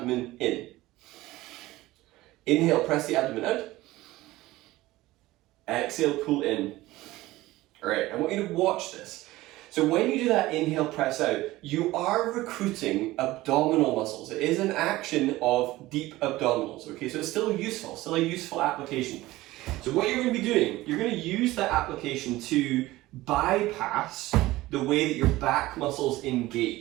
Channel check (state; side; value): quieter; left; 17.9 dB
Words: in. Inhale, press the abdomen out. Exhale, pull in. All right, I want you to watch this. So when you do that inhale, press out, you are recruiting abdominal muscles. It is an action of deep abdominals, okay? So it's still useful, still a useful application. So what you're going to be doing, you're going to use that application to bypass the way that your back muscles